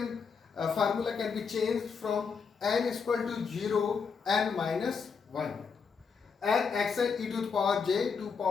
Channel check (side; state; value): right; quieter; 5.7 dB